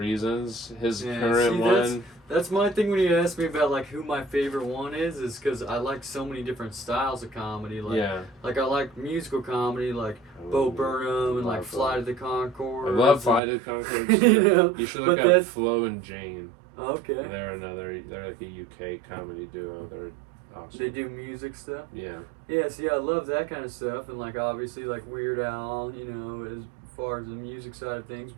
His current one. That's my thing when you ask me about like who my favorite one is because I like so many different styles of comedy. Like, like I like musical comedy, like Bo Burnham and like Fly to the Conchords. I love Fly to the Conchords. You should look up Flo and Jane. Okay. They're like a UK comedy duo. They're awesome. They do music stuff. Yeah. Yeah. See, I love that kind of stuff, and like obviously like Weird Al, you know, as far as the music side of things,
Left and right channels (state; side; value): drops out; left; at 13.4 s